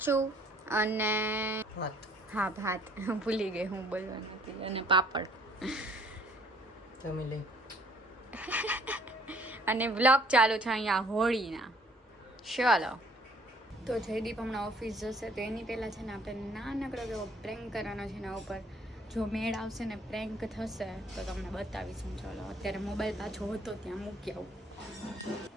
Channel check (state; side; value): normal; both; correlation 0.60